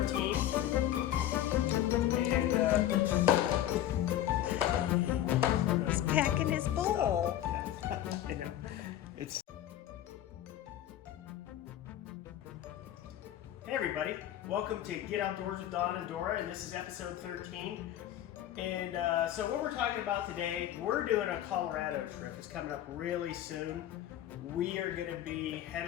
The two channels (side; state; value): right; quieter; 12.2 dB